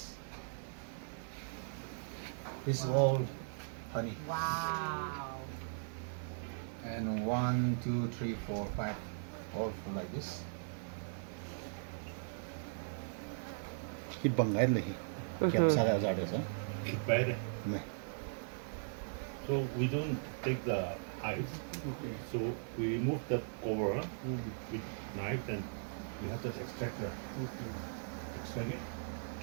This is all honey. Wow. And 1, 2, 3, 4, 5, all full like this. Hit bangai lagi. Kiam sada ada sa. Bad. Me. So we don't take the hives. So we remove the cover with knife and we have to extract it,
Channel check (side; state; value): left; silent; digital silence